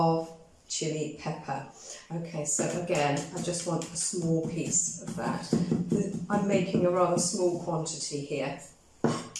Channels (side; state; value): both; identical; correlation 1.00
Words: chilli pepper. Okay, so again, I just want a small piece of that. I'm making a rather small quantity here,